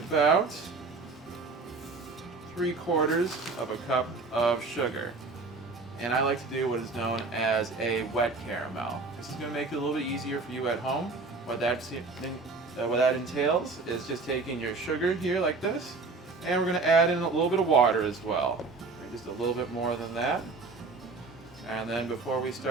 3/4 of a cup of sugar. And I like to do what is known as a wet caramel. This is going to make it a little bit easier for you at home. What that entails is just taking your sugar here like this, and we're going to add in a little bit of water as well. Just a little bit more than that. And then before we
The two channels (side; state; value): left; quieter; 4.0 dB